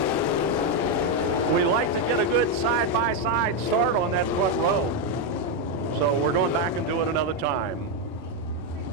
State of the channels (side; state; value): both; normal; correlation 0.03